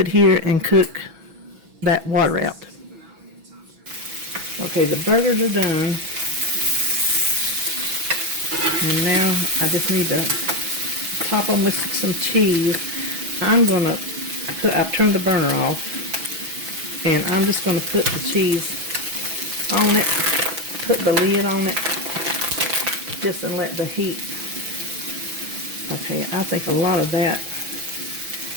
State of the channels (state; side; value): late; left; 6.1 ms